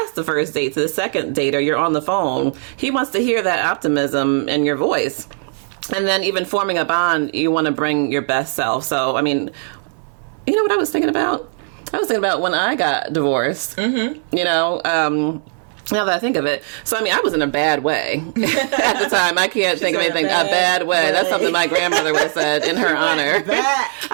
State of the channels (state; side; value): silent; left; digital silence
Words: the first date to the second date, or you're on the phone. He wants to hear that optimism in your voice. And then even forming a bond, you want to bring your best self. So, I mean, you know what I was thinking about? I was thinking about when I got divorced, now that I think of it. So, I mean, I was in a bad way at the time. I can't think of anything. A bad way. That's something my grandmother would have said in her honor.